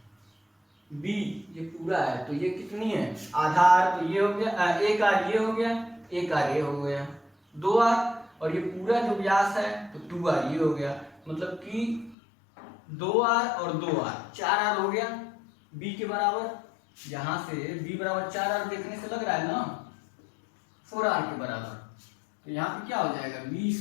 b ये पूरा है तो ये कितनी है, आधार तो ये हो गया, एक आर ये हो गया, एक आर ये हो गया, 2r, और ये पूरा जो व्यास है तो 2r ये हो गया, मतलब कि 2r और 2r 4r हो गया b के बराबर। यहां से b बराबर 4r देखने से लग रहा है ना 4r के बराबर, तो यहाँ पे क्या हो जाएगा, बी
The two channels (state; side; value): drops out; right; at 12.2 s